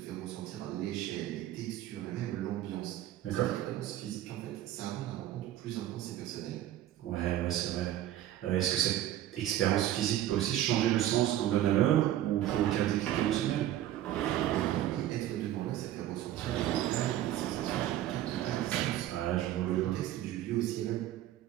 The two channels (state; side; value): quieter; left; 12.8 dB